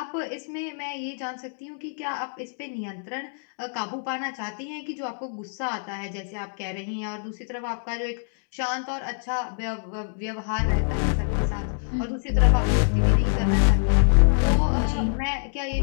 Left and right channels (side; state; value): right; silent; digital silence